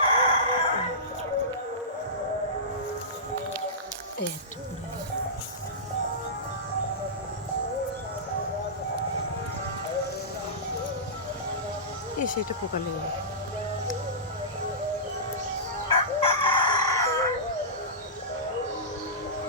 একটা পড়ে গেল। সেটা পোকা লেগে গেল।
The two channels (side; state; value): both; normal; correlation -0.19